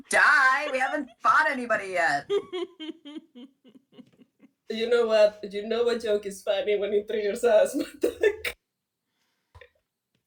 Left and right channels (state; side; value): identical; both; correlation 1.00